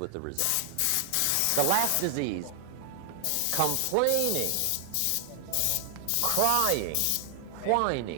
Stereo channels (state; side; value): different; both; correlation 0.00